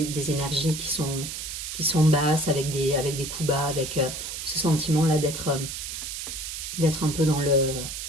énergies qui sont basses, avec des coups bas, avec ce sentiment-là d'être un peu dans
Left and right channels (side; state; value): right; noise; hiss, 6 dB below the sound